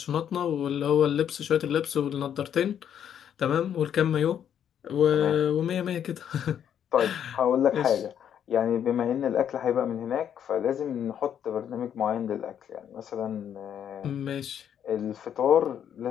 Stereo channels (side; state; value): right; quieter; 9.2 dB